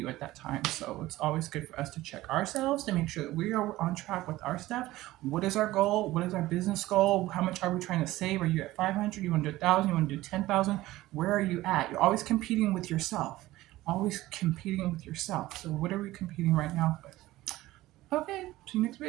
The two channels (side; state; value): left; quieter; 17.0 dB